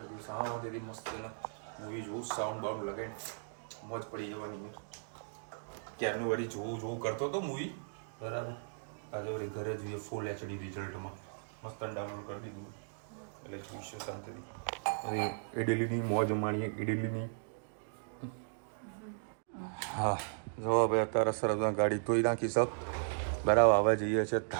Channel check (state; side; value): silent; left; digital silence